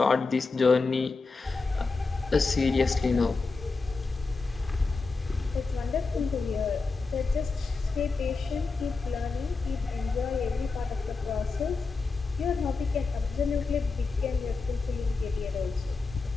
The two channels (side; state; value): right; quieter; 4.1 dB